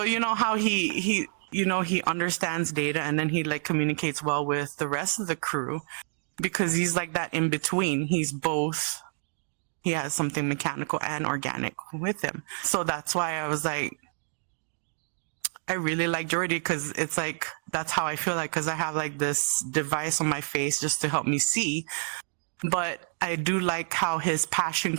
you know how he, you know, he understands Data, and then he like communicates well with the rest of the crew, because he's like that in between. He's both, he has something mechanical and organic with him. So that's why I was like, I really like Geordi, because it's like, that's how I feel like, because I have like this device on my face just to help me see. But I do like how his passion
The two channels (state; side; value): silent; left; digital silence